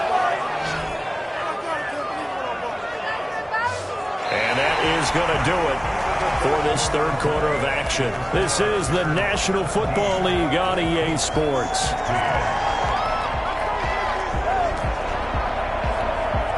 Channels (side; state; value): both; identical; correlation 1.00